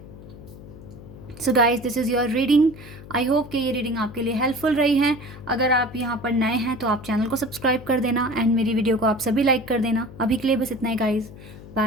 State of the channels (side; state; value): left; noise; hum, 16 dB below the sound